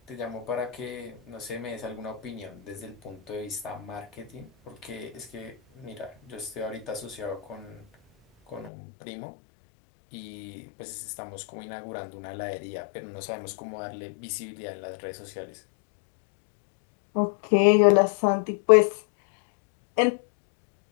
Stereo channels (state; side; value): drops out; right; at 8.7 s